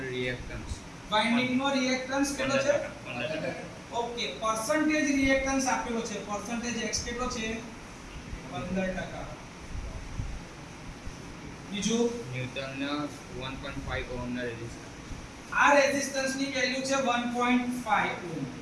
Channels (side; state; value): both; identical; correlation 1.00